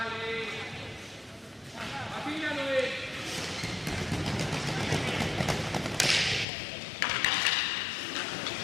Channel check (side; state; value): right; drops out; at 6.5 s